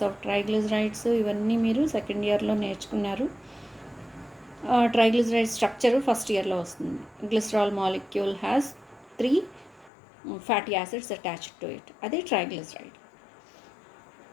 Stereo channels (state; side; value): drops out; right; at 9.9 s